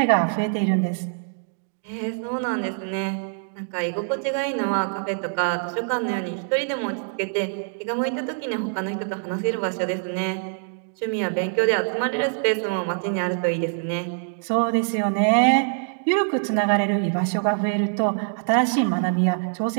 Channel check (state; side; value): silent; left; digital silence